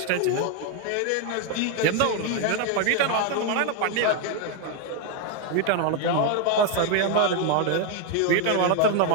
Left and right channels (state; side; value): different; both; correlation 0.01